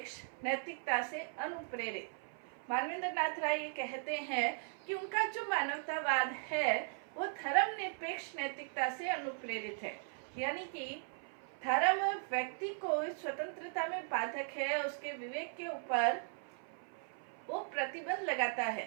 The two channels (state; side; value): silent; left; 52 dB below the other